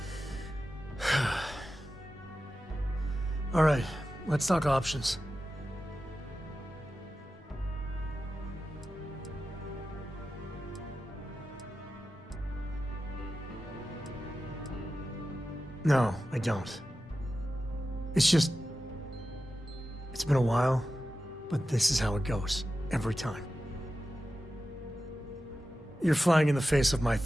All right, let's talk options. No, I don't. It's just... It's been a while, but this is how it goes. Every time. You're flying in the face of my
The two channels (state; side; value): normal; both; correlation 0.93